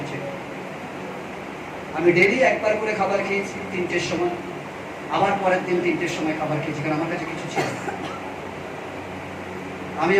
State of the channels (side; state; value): both; identical; correlation 1.00